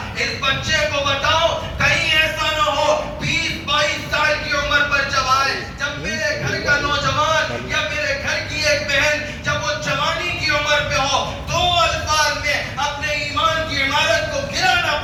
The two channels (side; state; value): both; identical; correlation 1.00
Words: اس بچے کو بتاؤ کہیں ایسا نہ ہو 20-22 سال کی عمر پر جب آئے, جب میرے گھر کا نوجوان یا میرے گھر کی ایک بہن جب وہ جوانی کی عمر پہ ہو, 2 الفاظ میں اپنے ایمان کی عمارت کو گرا نہ